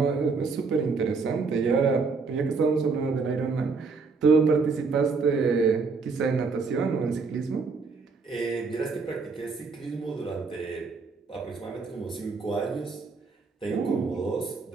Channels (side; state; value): left; quieter; 4.6 dB